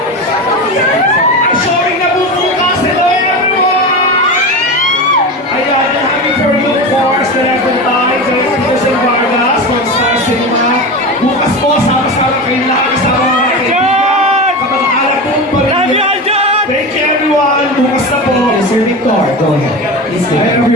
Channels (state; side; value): normal; both; correlation 0.24